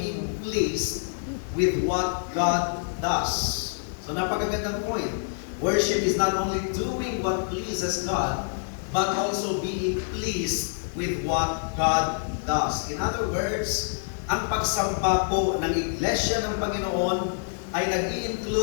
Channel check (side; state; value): right; silent; digital silence